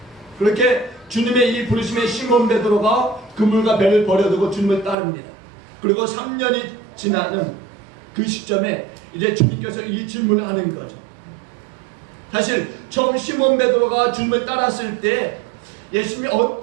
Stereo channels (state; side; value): drops out; left; at 5.0 s